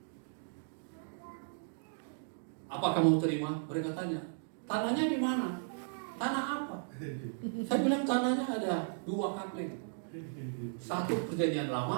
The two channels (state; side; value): silent; left; digital silence